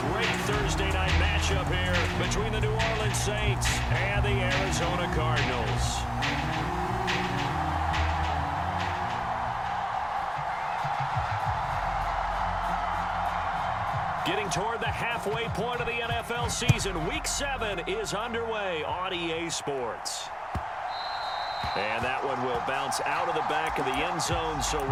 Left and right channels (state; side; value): identical; both; correlation 1.00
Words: great Thursday night matchup here between the New Orleans Saints and the Arizona Cardinals. Getting toward the halfway point of the NFL season, Week 7 is underway on EA Sports. And that one will bounce out of the back of the end zone, so